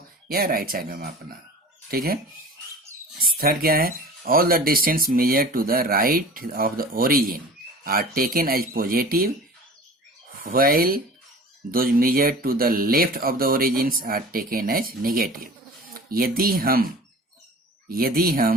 या राइट साइड में मापना हो, ठीक है। थर्ड क्या है, all the distance measure to the right of the origin are taken as positive while those measure to the left of the origins are taken as negative. यदि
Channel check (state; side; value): normal; both; correlation 0.40